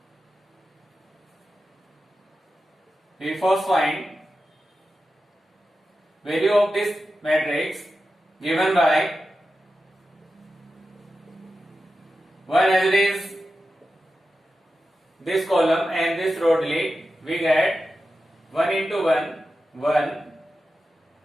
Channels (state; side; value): normal; both; correlation 0.92